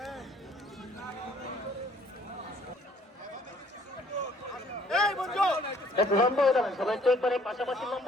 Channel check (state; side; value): normal; both; correlation 0.60